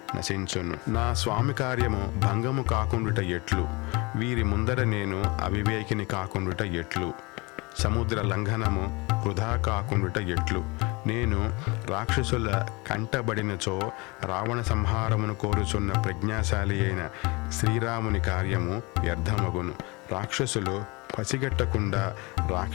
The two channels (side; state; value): right; quieter; 26.3 dB